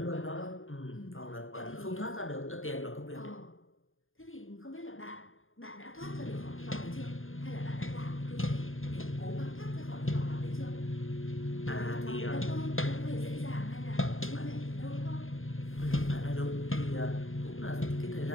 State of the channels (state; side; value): late; right; 0.59 ms